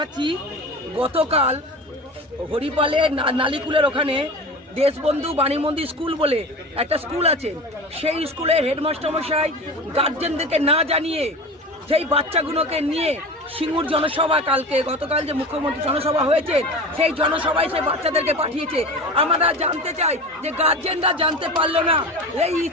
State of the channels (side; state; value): both; normal; correlation 0.32